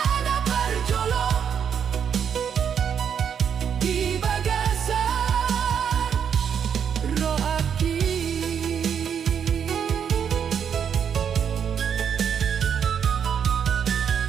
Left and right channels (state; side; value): quieter; left; 7.8 dB